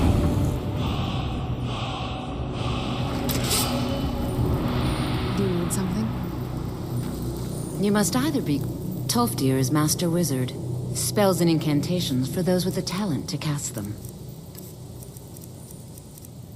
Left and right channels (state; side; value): identical; both; correlation 1.00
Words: Do you need something? You must either be... Tolfdir is Master Wizard. Spells and incantations for those with the talent to cast them.